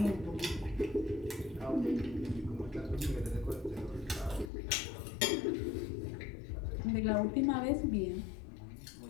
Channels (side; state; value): right; drops out; at 4.5 s